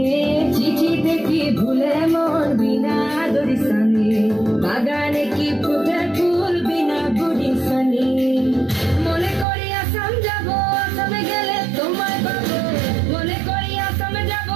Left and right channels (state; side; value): drops out; left; at 9.5 s